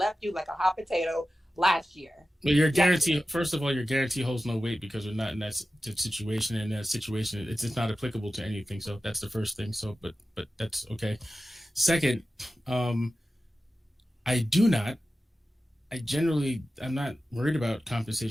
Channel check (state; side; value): normal; both; correlation 0.94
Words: you like a hot potato last year. Well, your guarantee, first of all, your guarantee holds no weight because we're not in that situation. In that situation, it's just not applicable to anything. So that's the first thing. So, but that's okay. Second, I'm not worried about